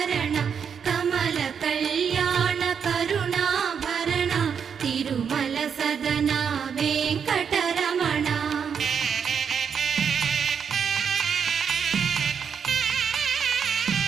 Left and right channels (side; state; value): left; quieter; 7.1 dB